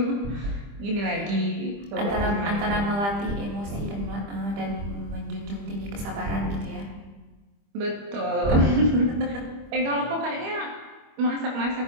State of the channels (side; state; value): left; late; 25 ms